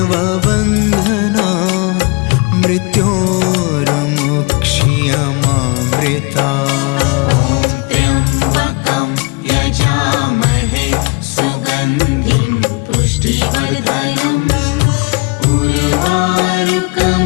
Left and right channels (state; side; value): quieter; right; 29.6 dB